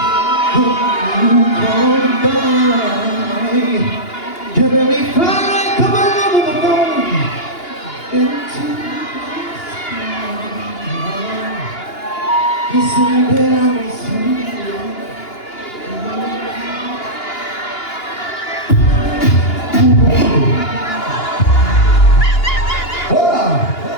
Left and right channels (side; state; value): right; late; 2.9 ms